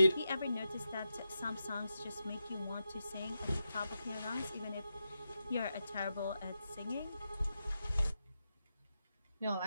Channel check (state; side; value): inverted; both; correlation -0.88